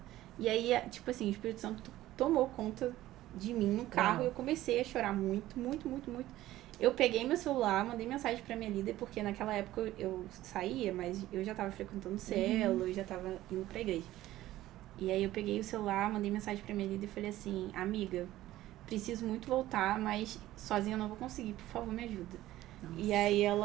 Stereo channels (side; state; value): left; quieter; 15.2 dB